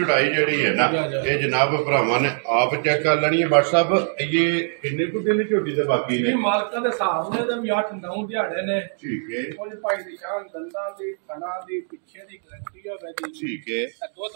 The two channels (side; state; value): left; silent; digital silence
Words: ਜਿਹੜੀ ਹੈ ਨਾ ਇਹ ਜਨਾਬ ਭਰਾਵਾਂ ਨੇ ਆਪ ਚੈੱਕ ਕਰ ਲੈਣੀ ਹੈ WhatsApp ਇਹ ਕਿੰਨੇ ਕੁ ਦਿਨ ਝੋਟੀ ਦੇ ਬਾਕੀ ਨੇ ਮਾਲਕਾਂ ਦੇ ਹਿਸਾਬ ਨੇ ਤੇ ਵੀ 8-9 ਦਿਹਾੜੇ ਨੇ ਠੀਕ ਹੈ ਕੁਝ ਭਾਈ ਦੀ ਸ਼ਾਨ ਦੰਦਾਂ ਦੀ ਥਣਾ ਦੀ ਪਿੱਛੇ ਦੀ ਗਰੰਟੀ ਹੋਵੇ ਦੀ ਠੀਕ ਹੈ